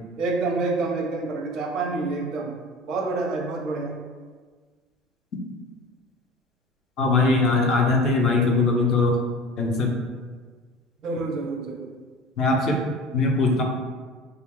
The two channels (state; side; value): normal; both; correlation 0.37